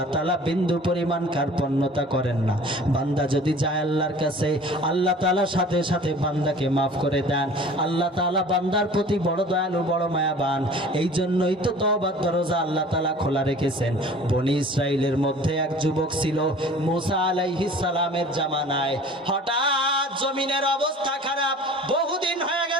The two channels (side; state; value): both; normal; correlation 0.46